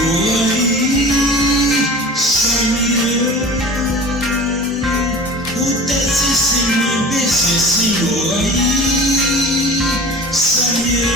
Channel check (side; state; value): both; normal; correlation 0.38